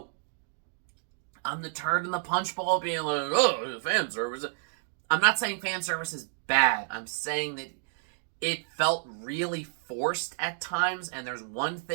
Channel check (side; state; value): left; silent; digital silence